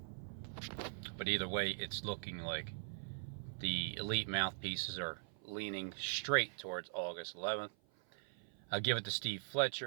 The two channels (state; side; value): silent; left; 50 dB below the other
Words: But either way, it's looking like the elite mouthpieces are leaning straight towards August 11th. I'll give it to Steve